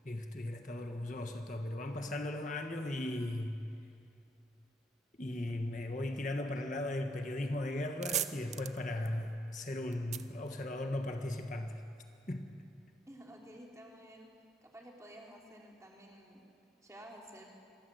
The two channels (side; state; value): both; normal; correlation 0.75